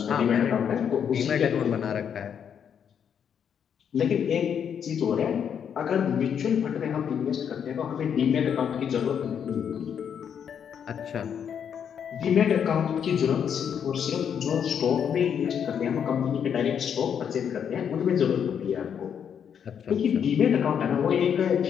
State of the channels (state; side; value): quieter; right; 8.0 dB